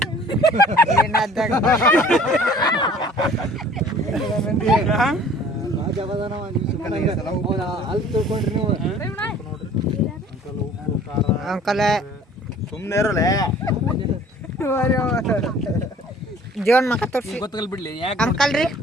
ಏನಾದಾಗ ಅಲ್ಲಿ ತಿಳ್ಕೊಂಡ್ರಿ ನೀವು ಅಂಕಲ್ ಸುಮ್ಮನೆ ಇರಲ್ಲ ಜೀವನ್ ಮಕ್ಕ ತೋರಿಸಿ ಗೊತ್ತಗಲ್ ಬಿಡ್ಲಿ ಯಾಕೆ ಅಂಕಲ್ ರೀ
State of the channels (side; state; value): both; normal; correlation 0.51